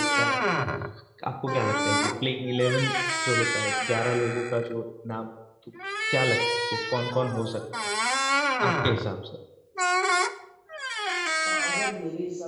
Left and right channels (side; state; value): both; identical; correlation 1.00